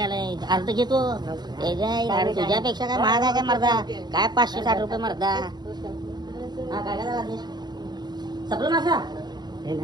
अर्ध घेतो त्याच्या तुझ्यापेक्षा काय महाग आहे काय मर्दा, काय 560 रुपये मर्दा. हा काय काय सपलं मासा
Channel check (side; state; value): left; late; 0.20 ms